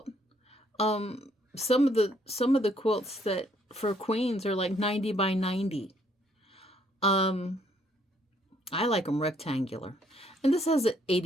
Some of the quilts that for queens are like 90 by 90. I like them rectangular. And this has an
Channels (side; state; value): both; normal; correlation 0.67